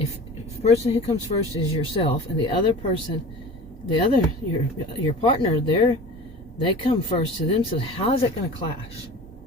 the person who comes first is yourself, and the other person, your partner, they come first to them, so how is that going to clash?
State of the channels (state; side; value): normal; both; correlation 0.38